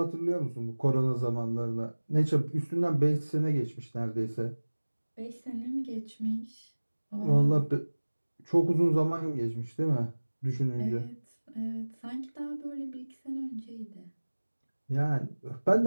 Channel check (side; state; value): both; inverted; correlation -1.00